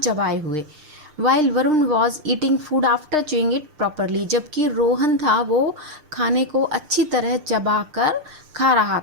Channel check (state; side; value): late; left; 6.6 ms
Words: हुए. While Varun was eating food after chewing it properly, जबकि रोहन था वो खाने को अच्छी तरह चबा कर खा रहा